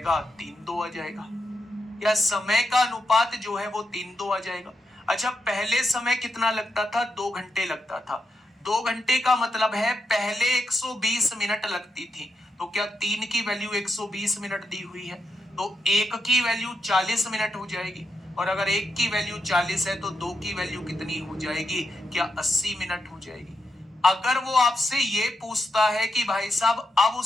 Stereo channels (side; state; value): both; normal; correlation 0.84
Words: 3:2 आ जाएगा। या समय का अनुपात जो है वो 3:2 आ जाएगा। अच्छा पहले समय कितना लगता था? 2 घंटे लगता था। 2 घंटे का मतलब है पहले 120 मिनट लगती थी, तो क्या 3 की वैल्यू 120 मिनट दी हुई है तो 1 की वैल्यू 40 मिनट हो जाएगी, और अगर 1 की वैल्यू 40 है तो 2 की वैल्यू कितनी हो जाएगी? क्या 80 मिनट हो जाएगी। अगर वो आपसे ये पूछता है कि भाई साहब अब